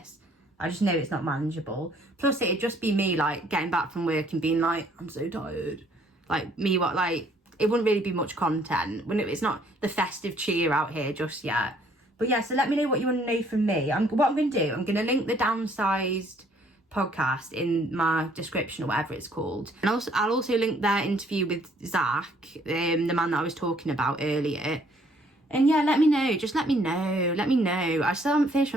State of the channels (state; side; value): normal; both; correlation 0.63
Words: I just know it's not manageable. Plus, it'd just be me, like, getting back from work and being like, I'm so tired. Like, me, what, like, it wouldn't really be much content. It's not the festive cheer out here just yet. But yeah, so let me know what you want to know from me. What I'm going to do, I'm going to link the Downsized podcast in my description, or whatever it's called. And I'll also link their interview with Zach, the man that I was talking about earlier. And yeah, let me know. Just let me know. I still haven't finished